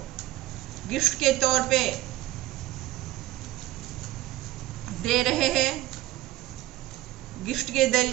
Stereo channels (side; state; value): left; quieter; 16.3 dB